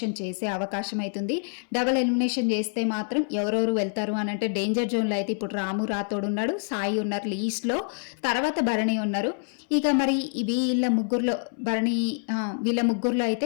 చేసే అవకాశం అవుతుంది. డబుల్ ఎలిమినేషన్ చేస్తే మాత్రం ఎవరెవరు వెళ్తారు అని అంటే డేంజర్ జోన్లో అయితే ఇప్పుడు రాము రాథోడ్ ఉన్నాడు, సాయి ఉన్నారు లీస్ట్లో, తర్వాత భరణి ఉన్నారు. ఇక మరి వీళ్ళ ముగ్గురులో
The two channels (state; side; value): silent; right; 61 dB below the other